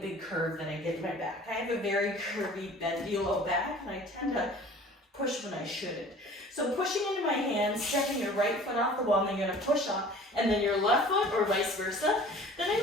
curve that I get in my back. I have a very curvy, bendy low back, and I tend to push when I shouldn't. So pushing into my hands, stepping your right foot off the wall, and then you're gonna push up, and then your left foot, or vice versa. Then I'm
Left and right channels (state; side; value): normal; both; correlation 0.46